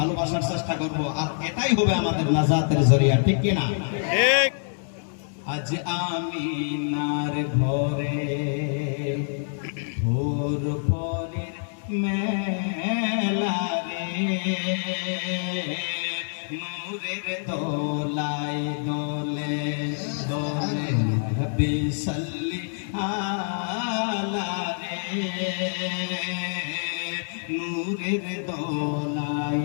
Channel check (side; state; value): right; silent; 61 dB below the other